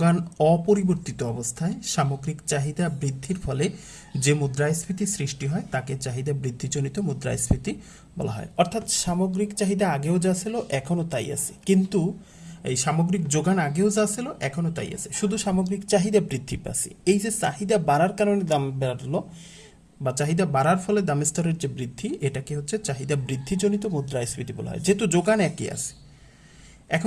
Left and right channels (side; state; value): both; identical; correlation 1.00